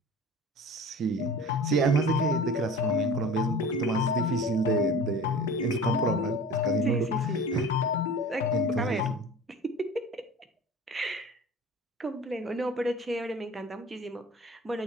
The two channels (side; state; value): both; normal; correlation 0.39